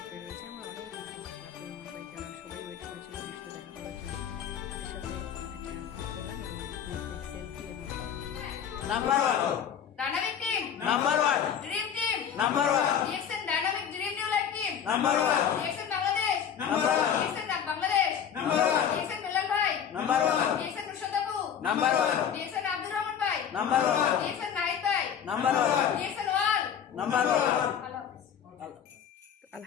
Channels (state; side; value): quieter; right; 8.3 dB